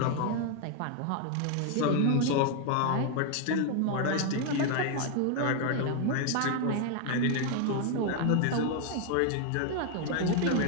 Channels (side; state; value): both; different; correlation 0.01